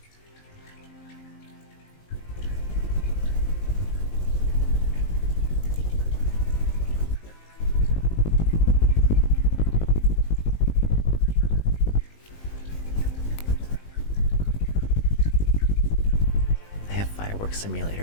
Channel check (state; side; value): late; right; 19 ms